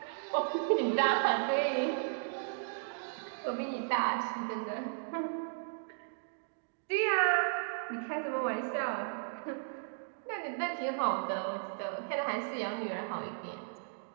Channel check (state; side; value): silent; left; digital silence